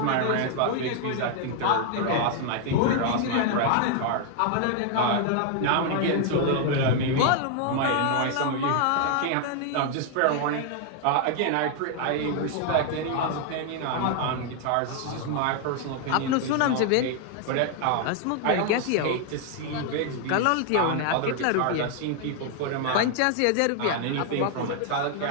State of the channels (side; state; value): both; different; correlation 0.00